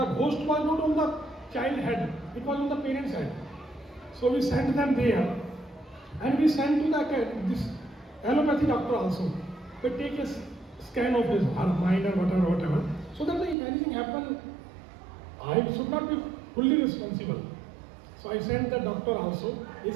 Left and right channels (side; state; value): left; drops out; at 13.6 s